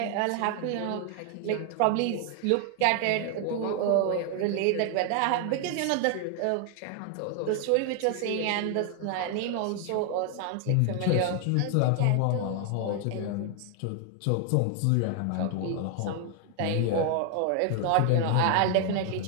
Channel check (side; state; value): both; different; correlation 0.00